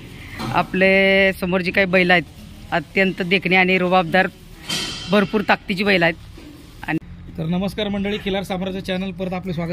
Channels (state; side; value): identical; both; correlation 1.00